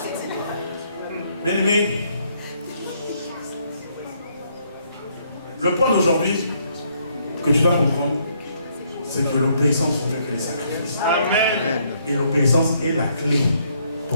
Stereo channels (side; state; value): both; inverted; correlation -0.70